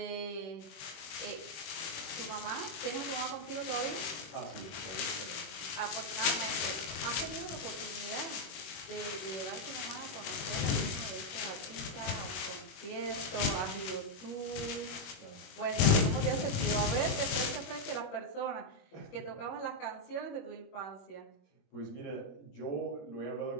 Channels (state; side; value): late; right; 21 ms